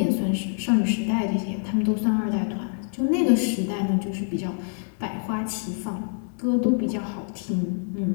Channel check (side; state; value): right; silent; 59 dB below the other